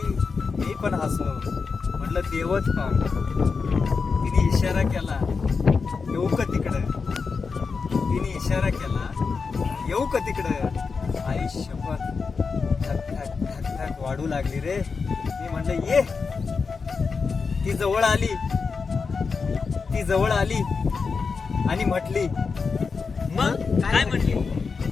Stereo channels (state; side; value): quieter; right; 5.0 dB